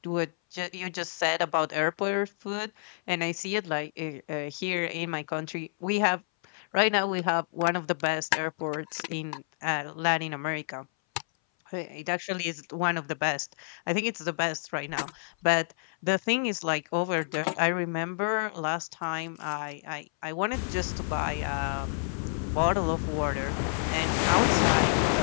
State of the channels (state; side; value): silent; right; 58 dB below the other